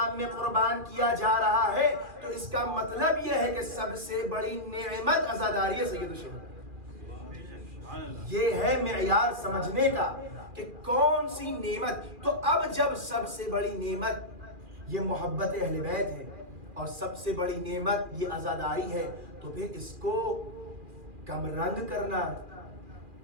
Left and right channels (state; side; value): late; left; 2.4 ms